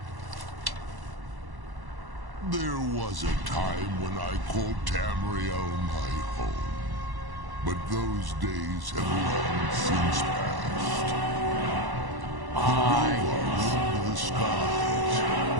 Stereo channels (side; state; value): left; late; 1.1 ms